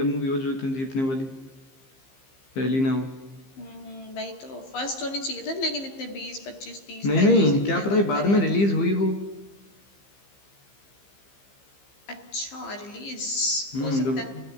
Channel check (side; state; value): right; late; 15 ms